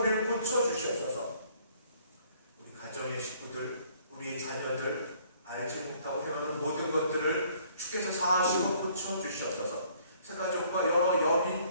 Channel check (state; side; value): inverted; both; correlation -0.61